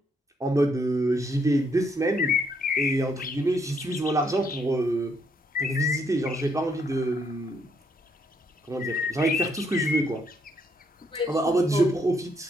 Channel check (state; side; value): normal; both; correlation 0.73